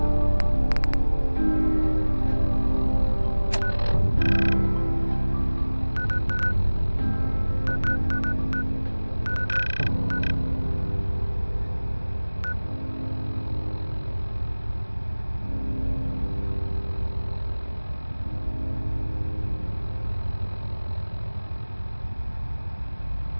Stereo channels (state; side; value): inverted; both; correlation -1.00